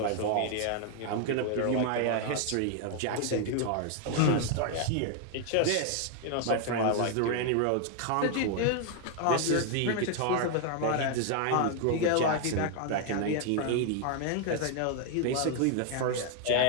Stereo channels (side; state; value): both; different; correlation 0.00